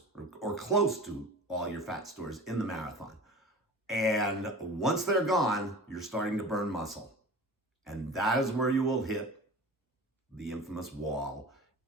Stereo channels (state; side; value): normal; both; correlation 0.37